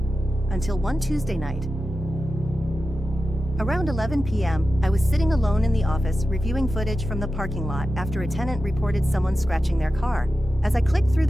until one Tuesday night. Around 11 p.m., I was sitting alone in the office reviewing footage from the parking lot after a tenant reported someone scratching their car. As I clicked through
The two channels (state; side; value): normal; both; correlation 0.92